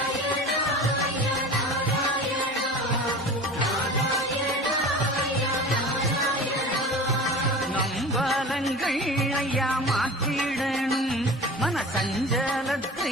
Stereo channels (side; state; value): both; normal; correlation 0.36